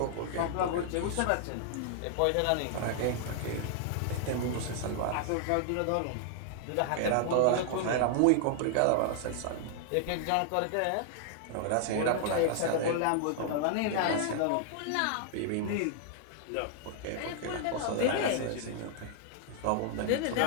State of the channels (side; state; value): both; different; correlation -0.01